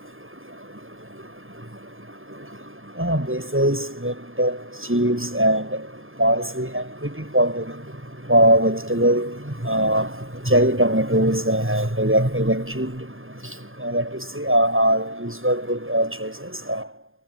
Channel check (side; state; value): left; late; 0.59 ms